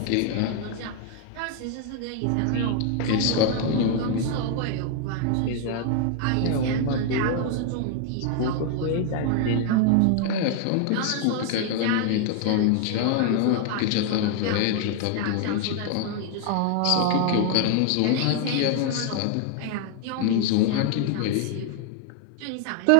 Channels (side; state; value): both; different; correlation 0.00